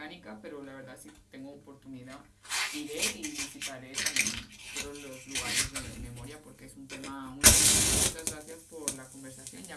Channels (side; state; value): both; identical; correlation 1.00